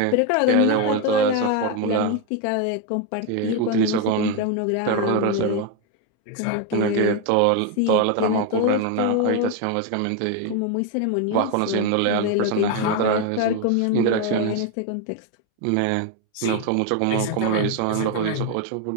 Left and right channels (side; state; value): both; different; correlation 0.01